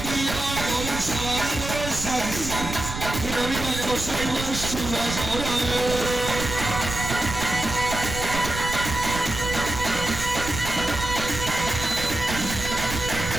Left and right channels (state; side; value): noise; right; rumble, 7 dB below the sound